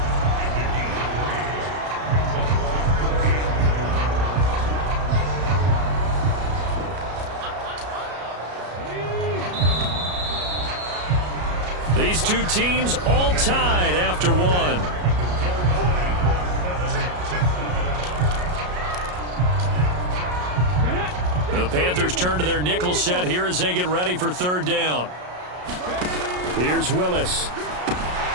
These two teams all tied after one. The Panthers turn to their nickel set here as they get ready for third down. Here's Willis.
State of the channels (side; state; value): left; late; 33 ms